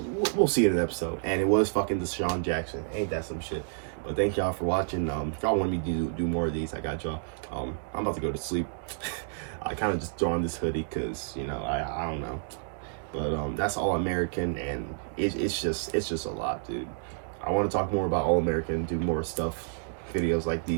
we'll see in an episode. And it was fucking Deshaun Jackson. Ain't that some shit? But thank y'all for watching. If y'all want me to do more of these, I got y'all. I'm about to go to sleep. I kind of just throw on this hoodie because, you know, I don't know. But that's All American, and it's just a lot, dude. I want to talk more about All American, do more stuff, videos like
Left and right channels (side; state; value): left; silent; digital silence